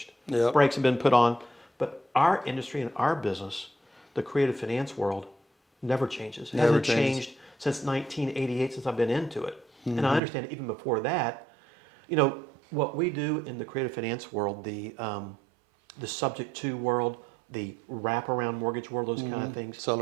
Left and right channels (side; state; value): left; drops out; at 10.2 s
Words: Yep. Brakes have been put on. But our industry and our business, the creative finance world, never changes. It hasn't changed since 1988, since I've been into it. And I understand even before that, What we do in the creative finance world, the subject to world, the wraparound mortgage world, those kind of things.